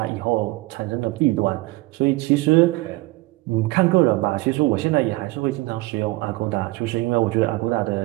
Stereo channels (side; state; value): left; quieter; 21.4 dB